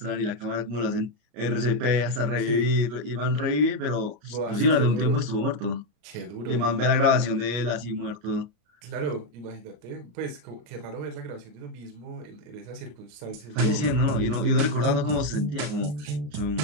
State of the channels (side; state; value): left; late; 33 ms